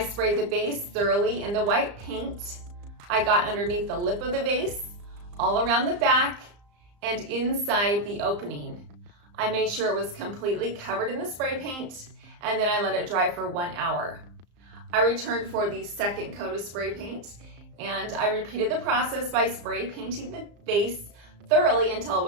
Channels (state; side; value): late; left; 34 ms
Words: the base thoroughly in the white paint. I got underneath the lip of the vase, all around the back, and inside the opening. I made sure it was completely covered in the spray paint, and then I let it dry for 1 hour. I returned for the second coat of spray paint, and I repeated the process by spray painting the vase thoroughly until it